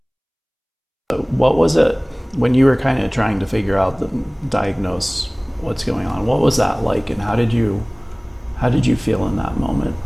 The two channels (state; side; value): identical; both; correlation 1.00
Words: What was it when you were kind of trying to figure out, diagnose what's going on? What was that like, and how did you feel in that moment